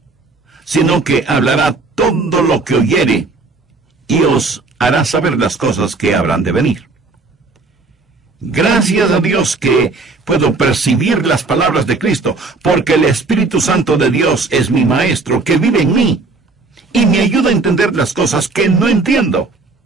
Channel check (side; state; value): left; quieter; 3.8 dB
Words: sino que hablará todo lo que oyere, y os hará saber las cosas que habrán de venir. Gracias a Dios que puedo percibir las palabras de Cristo, porque el Espíritu Santo de Dios es mi Maestro, que vive en mí, y me ayuda a entender las cosas que no entiendo.